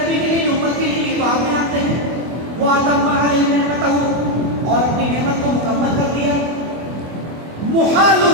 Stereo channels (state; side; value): late; left; 24 ms